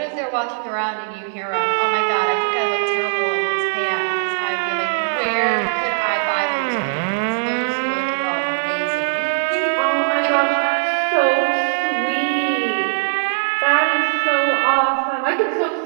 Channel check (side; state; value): left; silent; digital silence